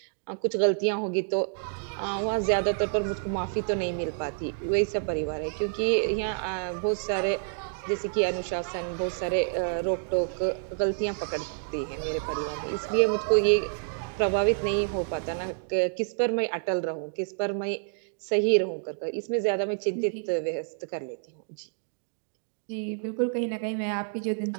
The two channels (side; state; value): left; silent; digital silence